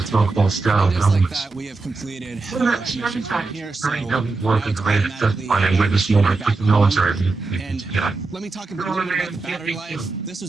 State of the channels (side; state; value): left; quieter; 3.7 dB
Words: Just like that, we have completed our mission from here. So and let me talk a little bit about the battery life. This